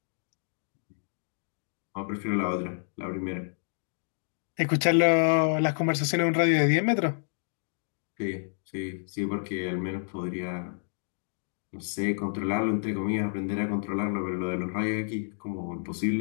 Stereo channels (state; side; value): silent; right; digital silence